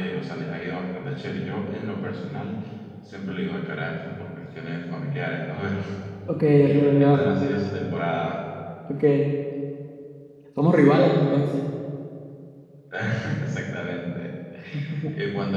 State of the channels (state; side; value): identical; both; correlation 1.00